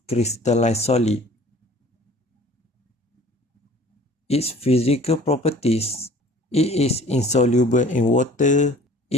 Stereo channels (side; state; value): both; normal; correlation 0.49